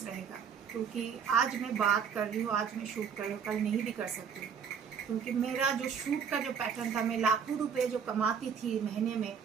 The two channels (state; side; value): quieter; left; 7.0 dB